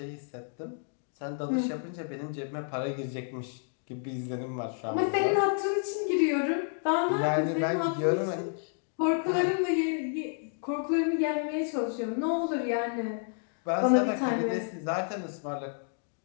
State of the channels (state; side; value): silent; right; 58 dB below the other